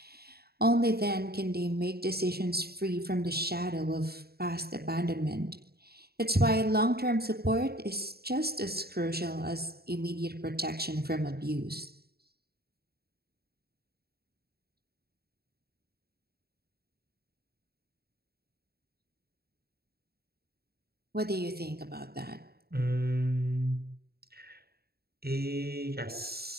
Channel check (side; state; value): left; late; 0.46 ms